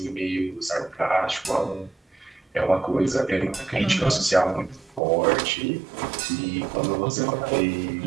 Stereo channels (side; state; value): left; drops out; at 5.0 s